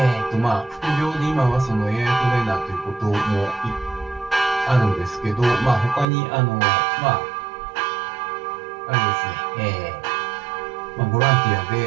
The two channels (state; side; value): drops out; left; at 6.1 s